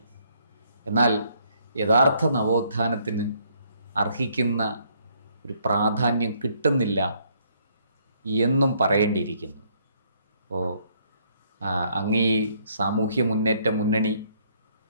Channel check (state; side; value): inverted; both; correlation -0.68